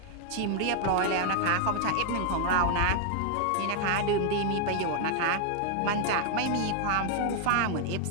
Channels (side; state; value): both; different; correlation 0.00